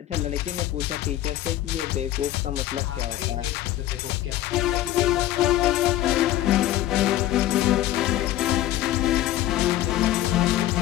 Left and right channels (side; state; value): right; quieter; 13.9 dB